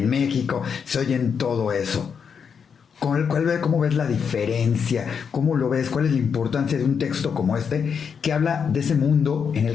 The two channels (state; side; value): quieter; right; 6.7 dB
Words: México, se oye en todo eso. ¿Cómo ves la diferencia? ¿Cómo lo ves? ¿Cuál es la importancia de un texto como este que habla de ese mundo en